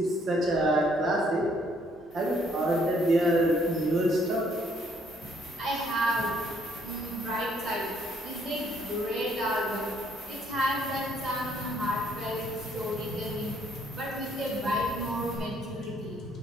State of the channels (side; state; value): both; normal; correlation 0.67